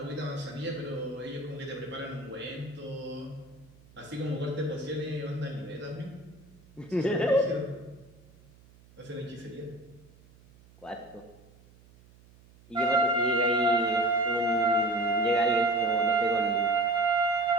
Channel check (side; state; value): right; noise; hum, 26 dB below the sound